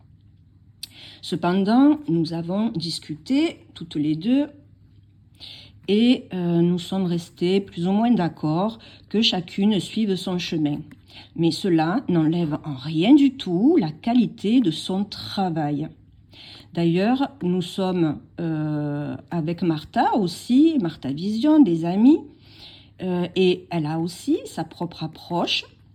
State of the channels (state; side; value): identical; both; correlation 1.00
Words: Cependant, nous avons discuté toutes les deux et nous sommes restés plus ou moins d'accord que chacune suive son chemin. Mais cela n'enlève en rien du tout la qualité de son travail. D'ailleurs, nous sommes avec Martha aussi, Martha Vision, des amis, et elle a aussi sa propre approche